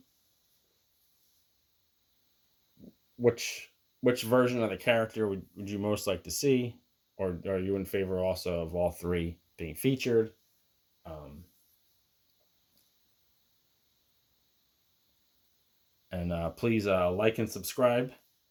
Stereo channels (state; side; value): identical; both; correlation 1.00